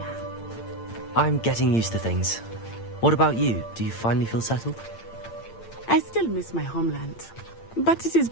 I'm getting used to things. What about you? Do you finally feel settled? I still miss my homeland, but it is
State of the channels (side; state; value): right; late; 8.8 ms